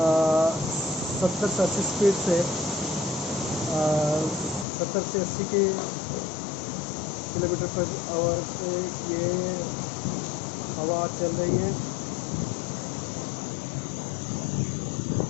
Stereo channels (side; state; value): right; drops out; at 4.7 s